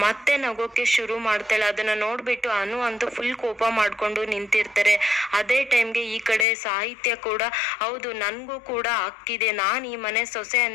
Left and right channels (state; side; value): drops out; right; at 6.5 s